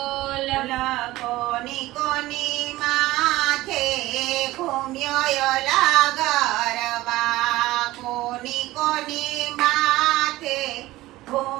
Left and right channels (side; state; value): left; quieter; 17.6 dB